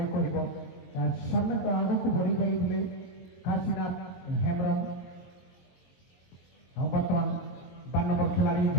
কহব। সামনে তো আগুক বড়ি যাই কাশীনাথ হেমব্রম। বর্তমান 12 নম্বর খেলাড়ি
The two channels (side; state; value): right; late; 22 ms